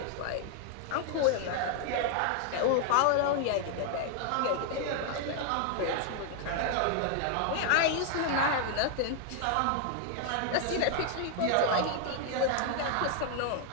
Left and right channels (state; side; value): different; both; correlation 0.00